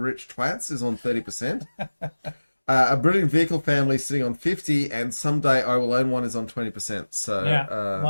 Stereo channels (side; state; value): both; inverted; correlation -1.00